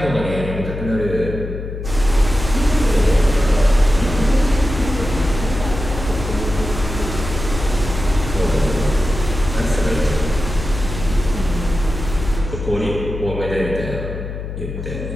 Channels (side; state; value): left; noise; hum, 7 dB below the sound